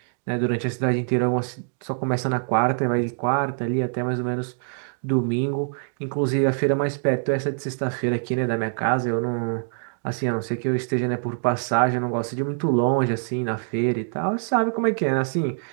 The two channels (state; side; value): silent; left; digital silence